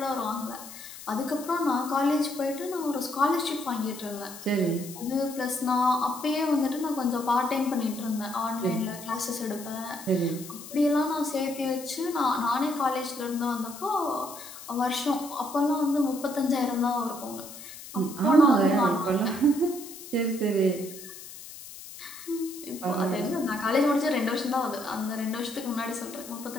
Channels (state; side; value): noise; left; hiss, 14 dB below the sound